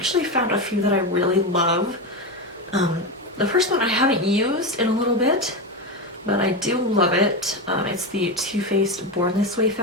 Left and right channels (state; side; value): normal; both; correlation 0.15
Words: found a few that I really love. The first one I haven't used in a little bit, but I do love it. It's the Too Faced Born This Way